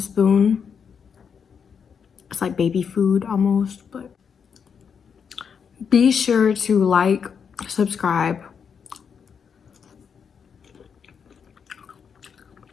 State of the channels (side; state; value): right; quieter; 6.8 dB